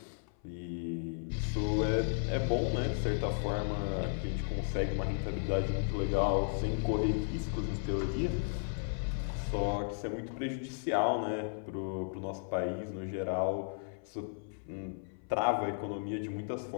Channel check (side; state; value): right; silent; 55 dB below the other